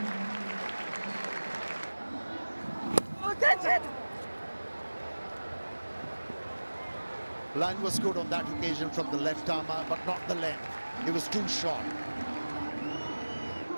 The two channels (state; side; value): inverted; both; correlation -1.00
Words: Oh, catch it! Line was good on that occasion from the left armour, but not the length. It was too short.